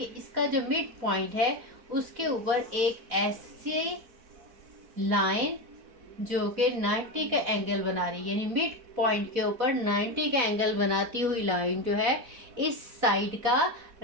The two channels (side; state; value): left; late; 4.0 ms